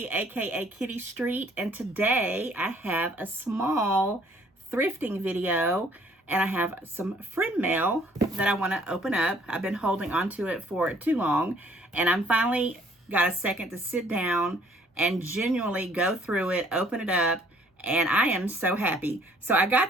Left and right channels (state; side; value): normal; both; correlation 0.60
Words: aka Kitty Street, and today I have a small thrifting video, and I have some friend mail that I want to open up. I've been holding onto it for too long, and I'm finally got a second to sit down and genuinely go through it, open it up, and I am so happy. So I